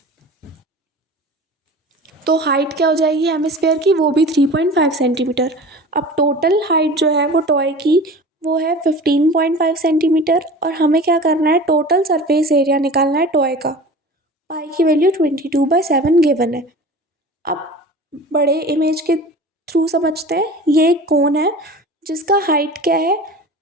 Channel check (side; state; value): both; normal; correlation 0.38